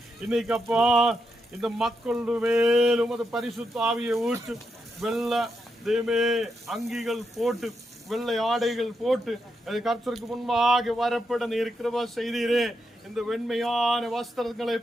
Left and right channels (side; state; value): both; normal; correlation 0.83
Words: இன்னைக்கு அப்பா இந்த மக்களுடைய மேலும் அது பரிசுத்த ஆவியை ஊற்று. வெள்ளை அங்கிகள் போட்டு, வெள்ளை ஆடைகள் போட்டு கர்த்தருக்கு முன்பாக வரப்பட நீர் கிருபை செய்தீரே. இந்த வெண்மையான வஸ்திரங்களை